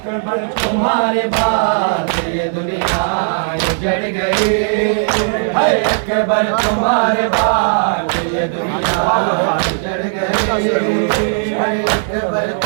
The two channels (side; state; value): left; silent; digital silence